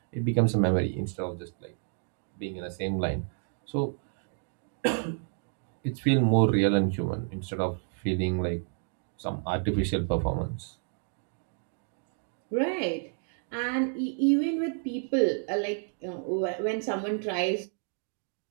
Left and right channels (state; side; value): silent; left; 58 dB below the other